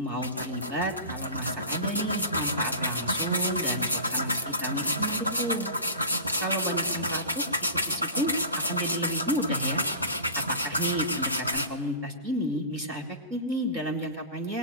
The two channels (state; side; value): inverted; both; correlation -0.33